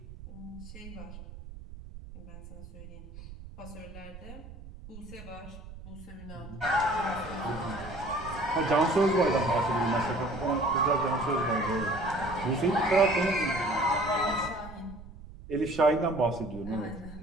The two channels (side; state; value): right; noise; rumble, 15 dB below the sound